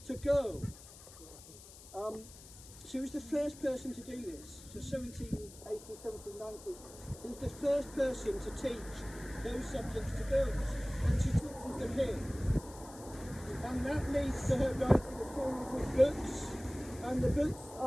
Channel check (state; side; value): noise; left; hiss, 18 dB below the sound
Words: to girls. She was the first person to do this, so 1780s, 1790s. She was the first person to teach those subjects to girls, and she teaches them here. And that leads to her writing a series of books, and the books